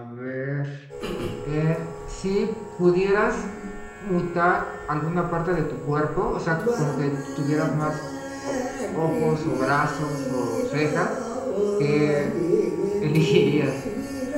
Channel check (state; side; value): identical; both; correlation 1.00